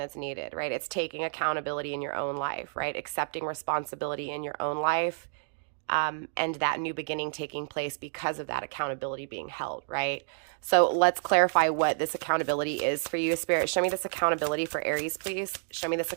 needed, right? It's taking accountability in your own life, right? Accepting responsibility in your own life, and that new beginning taking place because of that accountability being held, right? So let's clarify what this accountability is for you. Spirit, show me this accountability for Aries, please. Show me this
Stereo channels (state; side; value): silent; left; digital silence